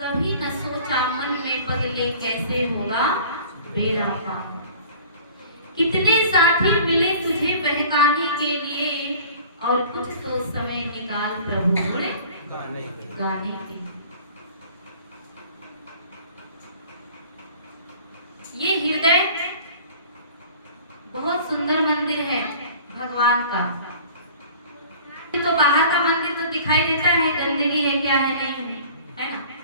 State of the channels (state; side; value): inverted; both; correlation -0.46